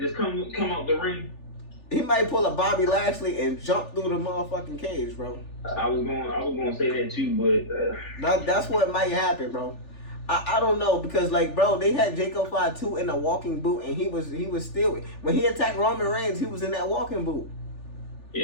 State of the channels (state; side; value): late; right; 3.4 ms